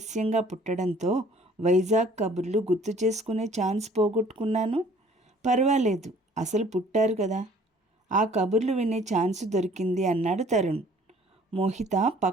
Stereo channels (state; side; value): normal; both; correlation 0.55